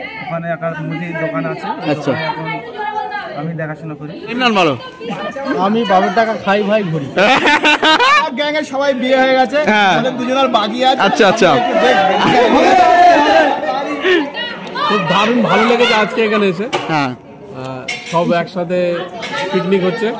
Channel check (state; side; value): identical; both; correlation 1.00